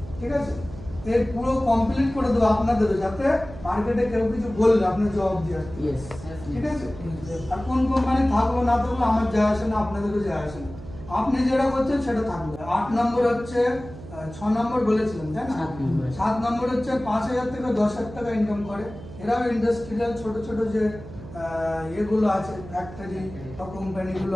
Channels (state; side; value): noise; right; hum, 14 dB below the sound